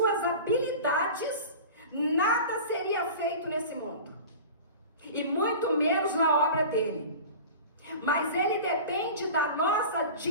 habilidades, nada seria feito nesse mundo. E muito menos na obra dele. Mas ele depende da nossa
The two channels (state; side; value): inverted; both; correlation -0.36